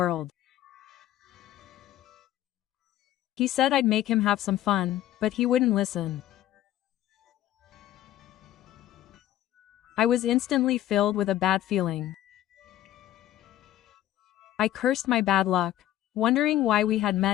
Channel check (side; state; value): right; quieter; 13.3 dB